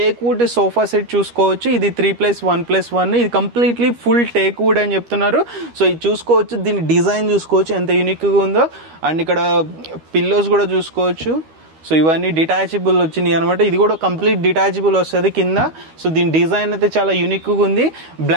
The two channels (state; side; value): late; left; 13 ms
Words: వుడ్ సోఫా సెట్ చూసుకోవచ్చు, ఇది 3+1+1. ఇది కంప్లీట్లీ ఫుల్ టేక్ వుడ్ అని చెప్తున్నారు. సో ఇది చూసుకోవచ్చు, దీని డిజైన్ చూసుకోవచ్చు ఎంత యూనిక్గా ఉందో. అండ్ ఇక్కడ పిల్లోస్ కూడా చూసుకోవచ్చు. సో ఇవన్నీ డిటాచబుల్ వచ్చినాయి అనమాట. ఇది కూడా కంప్లీట్ డిటాచబుల్ వస్తుంది కింద. సో దీని డిజైన్ అయితే చాలా యూనిక్గా ఉంది.